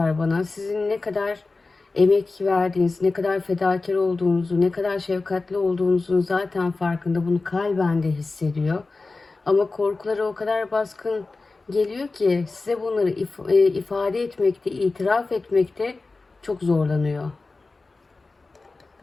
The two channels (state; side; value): quieter; right; 3.6 dB